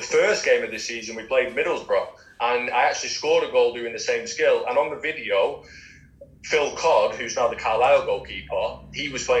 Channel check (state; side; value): identical; both; correlation 1.00